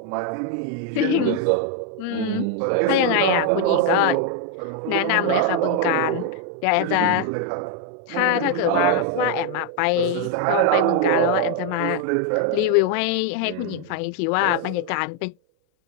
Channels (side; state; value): both; different; correlation 0.01